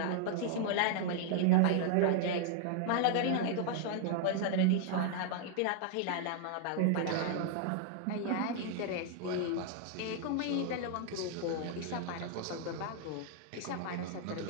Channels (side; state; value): both; different; correlation -0.01